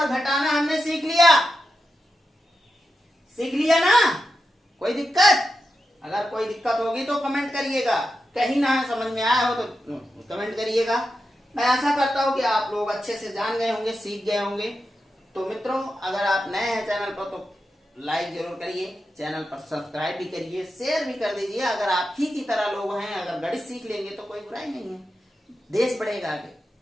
घटाना हमने सीख लिया, सीख लिया ना। कोई दिक्कत, अगर कोई दिक्कत होगी तो कमेंट करिएगा, कहीं ना समझ में आया हो तो कमेंट करिएगा। मैं आशा करता हूं कि आप लोग अच्छे से जान गए होंगे, सीख गए होंगे। तो मित्रों, अगर आप नए हैं चैनल पर तो लाइक जरूर करिए, चैनल पर सब्सक्राइब भी करिए, शेयर भी कर दीजिए। अगर आप ही की तरह लोग हैं, अगर गणित सीख लेंगे तो कोई बुराई नहीं है, देश बढ़ेगा आगे।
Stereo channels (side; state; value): both; normal; correlation 0.89